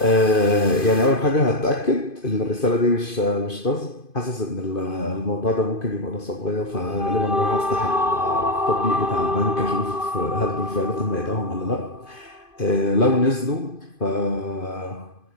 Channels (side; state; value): right; late; 2.5 ms